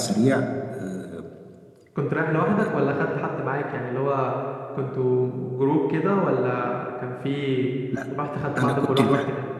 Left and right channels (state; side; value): identical; both; correlation 1.00